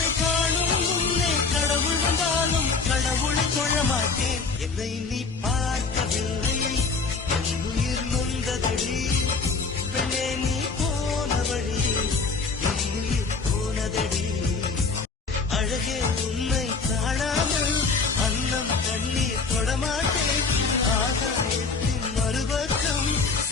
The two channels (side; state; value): right; quieter; 4.5 dB